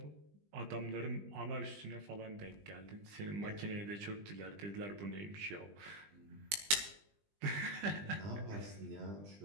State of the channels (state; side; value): late; left; 20 ms